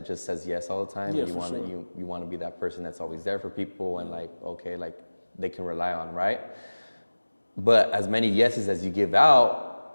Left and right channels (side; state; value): both; inverted; correlation -1.00